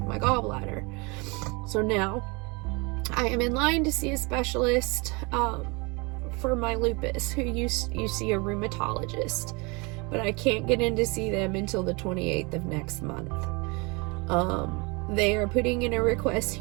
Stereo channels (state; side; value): quieter; left; 28.4 dB